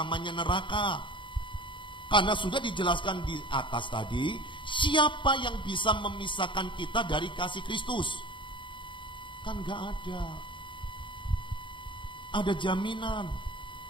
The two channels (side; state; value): right; late; 0.24 ms